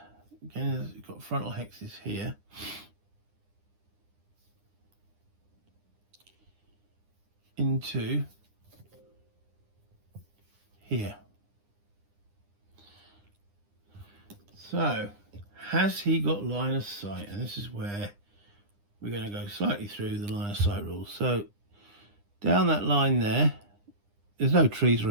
Again, you've got frontal hexes here. Into here. So, has he got line of sight? And this is where we're going to go slightly through the line of sight rules. So, down that line there, there's no trees or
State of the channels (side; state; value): left; late; 9.9 ms